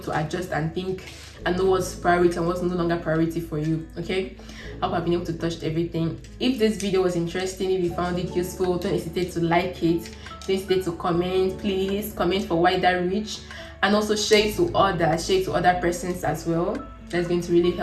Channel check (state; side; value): identical; both; correlation 1.00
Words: to adjust and think and know what's priority and what's no longer priority for you. Okay, I hope I've been able to touch everything. If this video was interesting, if you found it useful, don't hesitate to like it, don't hesitate to comment. Please comment for wider reach, and also share it to other persons as well. That's going to really